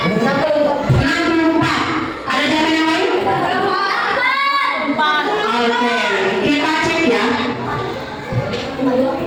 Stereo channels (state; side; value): identical; both; correlation 1.00